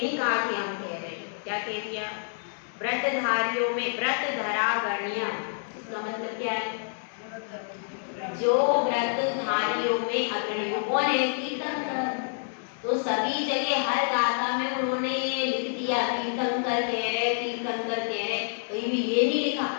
नहीं कहा कि हम कह रहे हैं, क्या कह दिया, व्रतधारियों में व्रतधरागण्य, इसका मतलब क्या है, जो व्रतधारियों में अग्रणी कौन है, तीर्थंकर। तो सभी जगह हर गाथा में उन्होंने ये लिख दिया तीर्थंकर कह रहे, तीर्थंकर कह रहे, कहीं भी ये नहीं लिखा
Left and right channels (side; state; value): right; silent; digital silence